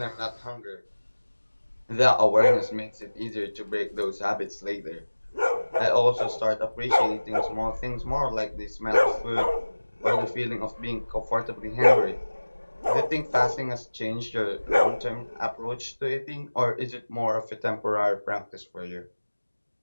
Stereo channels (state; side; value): inverted; both; correlation -1.00